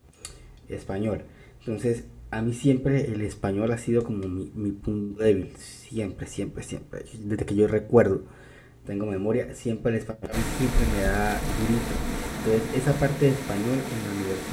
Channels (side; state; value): both; identical; correlation 1.00